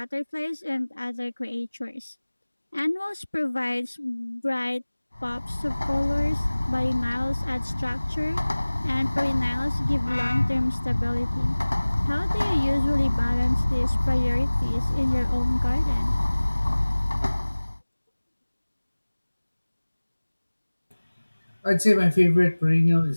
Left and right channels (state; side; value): inverted; both; correlation -1.00